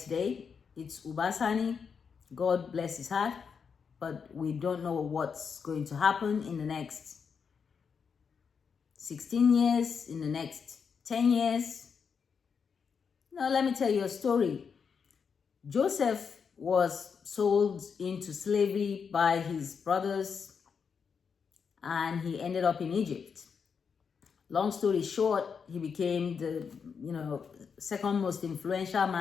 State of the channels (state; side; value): quieter; right; 6.2 dB